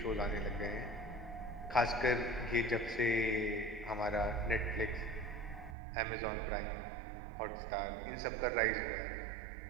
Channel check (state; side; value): drops out; left; at 5.8 s